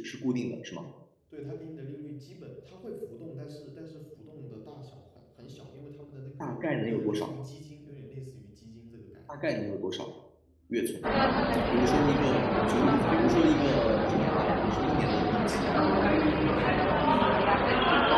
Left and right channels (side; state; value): both; identical; correlation 1.00